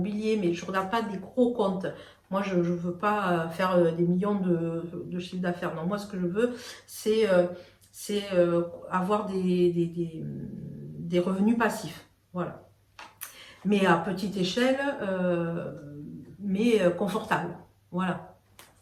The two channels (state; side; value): identical; both; correlation 1.00